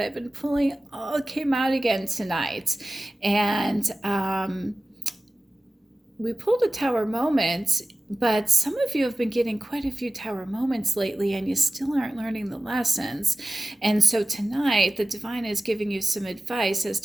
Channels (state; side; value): normal; both; correlation 0.95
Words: I've been pulling all came out again tonight. And we pulled a tower moment, but some of you have been getting quite a few tower moments lately and you still aren't learning the lessons. And so tonight, the divine is giving you some advice as